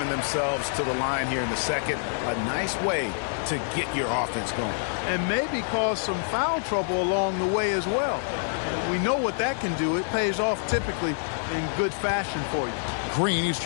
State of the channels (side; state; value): right; silent; digital silence